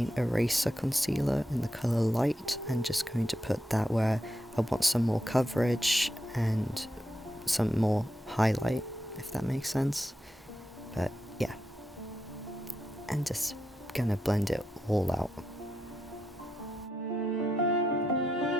Eraser Concealer in the colour Light, and just going to put that where I want some more coverage and some more highlight, if that makes sense. But yeah, and just gonna blend it all out.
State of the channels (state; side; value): normal; both; correlation 0.85